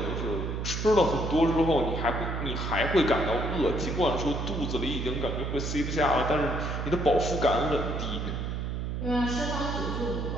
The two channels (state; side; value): noise; right; hum, 3 dB below the sound